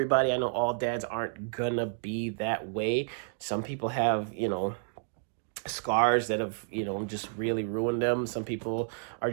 I know all dads aren't gonna be that way. Some people have, scars that have, just really ruined them. Some people are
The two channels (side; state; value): left; silent; digital silence